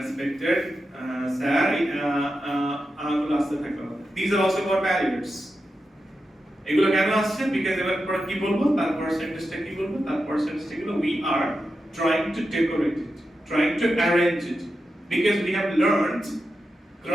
sir, আগুলো আসতে থাকবে। These are also called barriers. এগুলো কেন আসছে? because এবার পর কি বলবো, তারপর সেন্টেন্সটা কি বলবো, তারপর সেন্টেন্সটা কি বলবো, we are trying to decorate it, trying to arrange it, because we have learned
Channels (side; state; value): both; normal; correlation 0.89